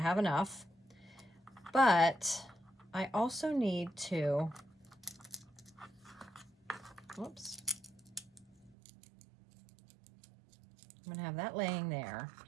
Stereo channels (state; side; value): drops out; left; at 8.8 s